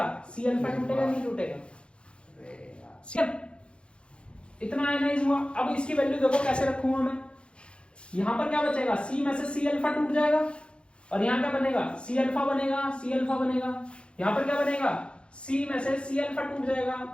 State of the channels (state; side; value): late; right; 0.057 ms